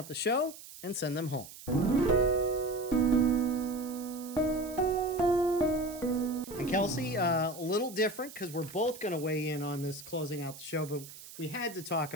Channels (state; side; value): noise; right; hiss, 16 dB below the sound